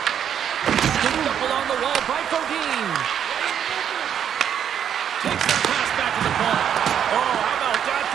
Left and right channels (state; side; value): quieter; left; 8.9 dB